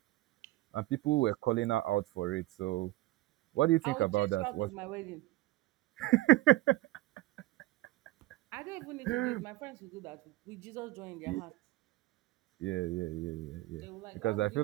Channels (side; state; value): left; quieter; 17.7 dB